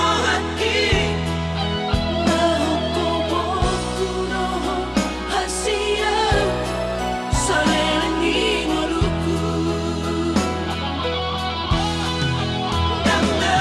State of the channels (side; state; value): both; identical; correlation 1.00